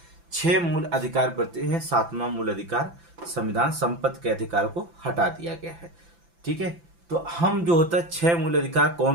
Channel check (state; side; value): late; left; 5.9 ms